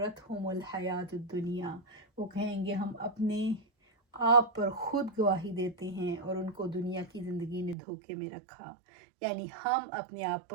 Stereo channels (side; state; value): left; drops out; at 7.8 s